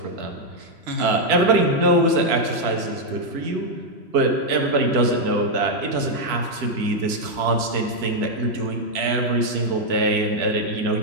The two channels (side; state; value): left; late; 3.0 ms